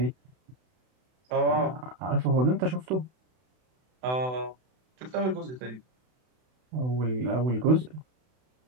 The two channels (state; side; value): late; left; 32 ms